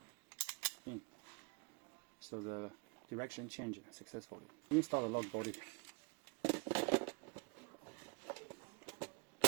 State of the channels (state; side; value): quieter; left; 32.2 dB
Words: in. So the direction changes successfully. Install the lock body.